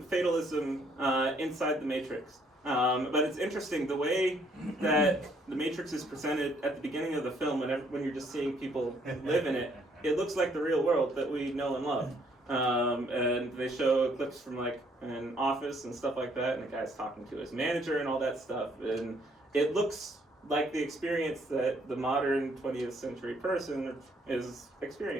fatalism inside the Matrix. But it's interesting, the way that the Matrix is presented at the beginning of the film, when you're just seeing people live in it, it looks like the real world that we know and love. And they show clips from like an office and stuff like that, and the guy's talking to his manager and all that stuff. And it looks like the experience that the modern 20th century person is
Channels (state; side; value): normal; both; correlation 0.66